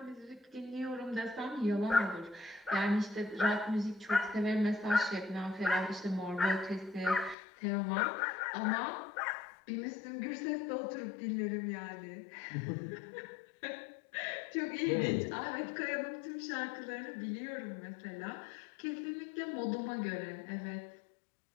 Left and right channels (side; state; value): right; drops out; at 7.4 s